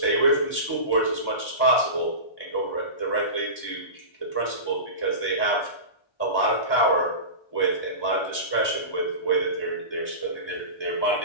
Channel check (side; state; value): right; late; 1.1 ms